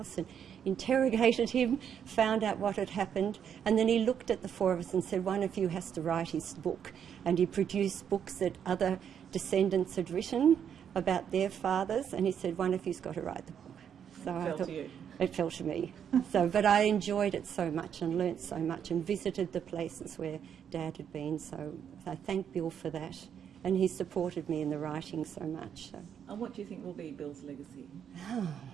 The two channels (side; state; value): left; quieter; 8.3 dB